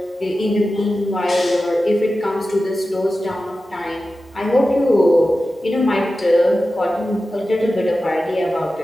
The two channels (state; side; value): normal; both; correlation 0.94